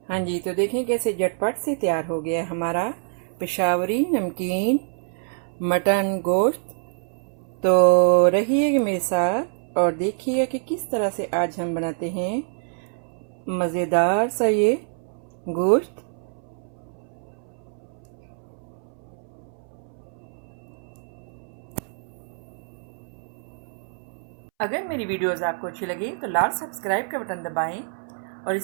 हाँ जी, तो देखें कैसे झटपट से तैयार हो गया हमारा पेशावरी नमकीन मटन गोश्त। तो रहिएगा मेरे साथ और देखिएगा कि किस तरह से आज हम बनाते हैं मज़ेदार सा ये गोश्त। अगर मेरी वीडियोस आपको अच्छी लगी तो लाल सब्सक्राइब का बटन दबाएं और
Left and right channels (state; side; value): silent; left; 61 dB below the other